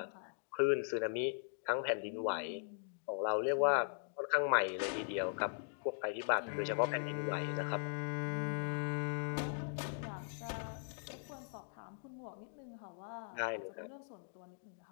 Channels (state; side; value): silent; right; digital silence